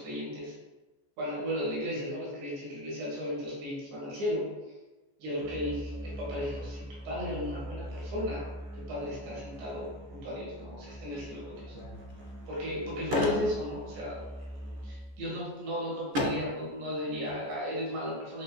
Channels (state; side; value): late; left; 14 ms